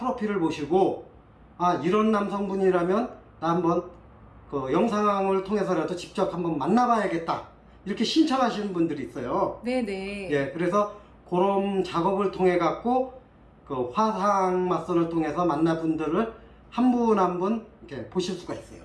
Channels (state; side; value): identical; both; correlation 1.00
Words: 보시고 이런 남성분이라면 나 한번 영상을 통해서라도 직접 한번 만나봐야겠다 이렇게 신청하시는 분들이 있어요. 네네. 예, 그래서 그런 작업을 통해 갖고 화상 맞선을 통해서 만나 분들을 한 분 한 분 이렇게 보실 수가 있어요.